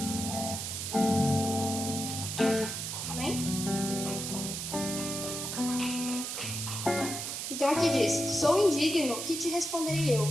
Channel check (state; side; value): noise; right; hiss, 4 dB below the sound